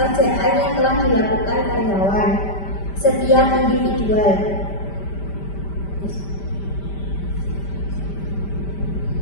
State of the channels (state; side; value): late; right; 5.1 ms